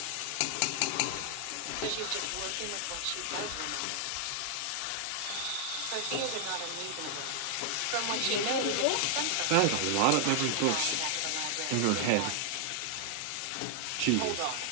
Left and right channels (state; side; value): different; both; correlation 0.00